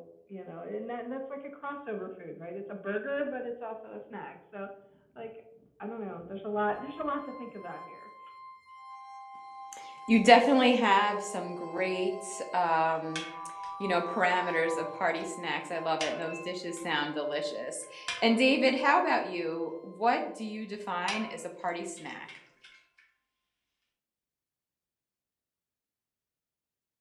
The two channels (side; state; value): both; identical; correlation 1.00